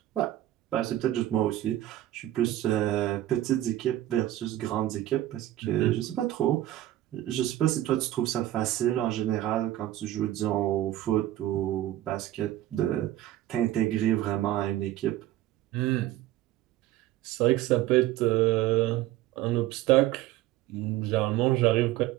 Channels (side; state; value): left; quieter; 14.2 dB